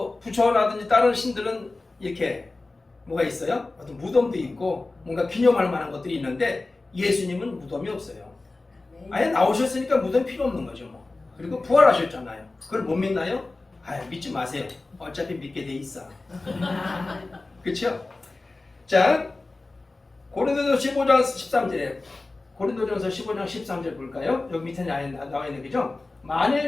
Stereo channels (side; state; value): right; quieter; 3.3 dB